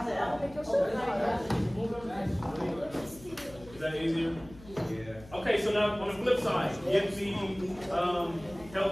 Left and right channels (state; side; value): noise; left; hum, 19 dB below the sound